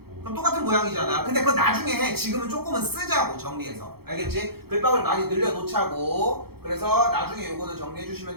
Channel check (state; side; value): late; left; 0.96 ms